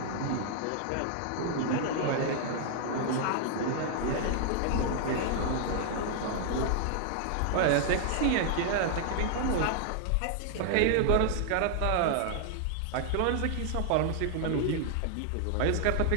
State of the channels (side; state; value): both; different; correlation 0.00